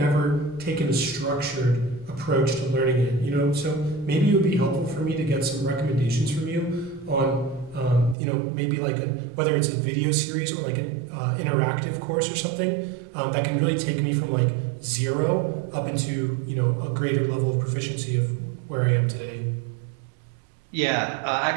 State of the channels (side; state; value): left; drops out; at 8.2 s